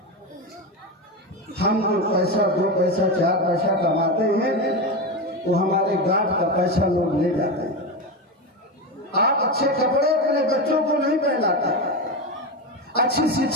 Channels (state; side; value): normal; both; correlation 0.17